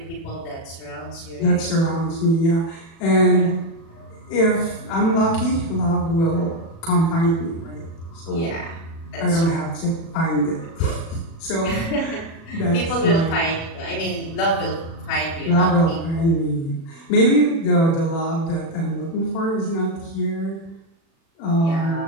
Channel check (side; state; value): right; late; 36 ms